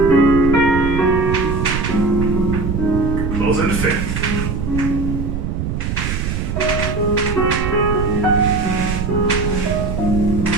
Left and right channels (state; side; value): noise; right; rumble, 2 dB below the sound